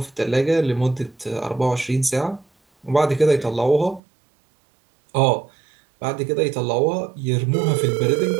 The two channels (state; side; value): drops out; left; at 4.0 s